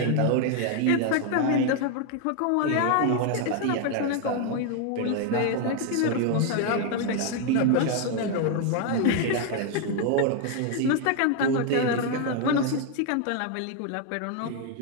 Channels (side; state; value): both; different; correlation 0.01